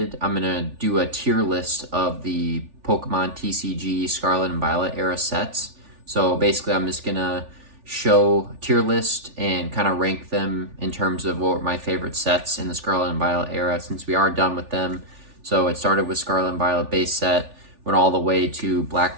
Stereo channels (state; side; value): late; left; 3.4 ms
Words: I'm going to do a tier list of the Pokemon TCG Scarlet and Violet Era sets. So basically, I'm just going to show a tier list and kind of rank them in terms of what were my favorite sets in the Scarlet and Violet Era since we are done with them. So it started with Scarlet and Violet base set, went all the way to Black